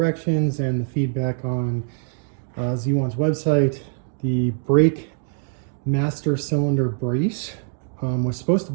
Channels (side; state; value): left; silent; 56 dB below the other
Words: and the feedback on Z1's website, the brake master cylinder brace was supposed to